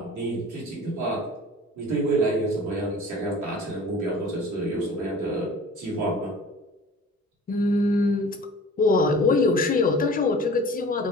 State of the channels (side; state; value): both; normal; correlation 0.43